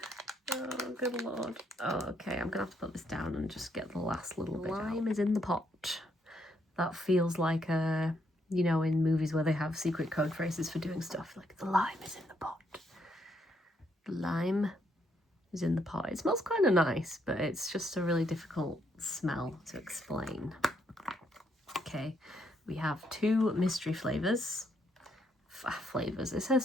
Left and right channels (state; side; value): normal; both; correlation 0.74